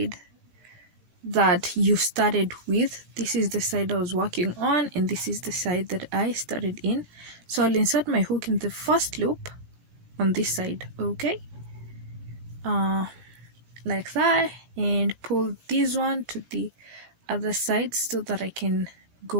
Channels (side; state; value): left; late; 18 ms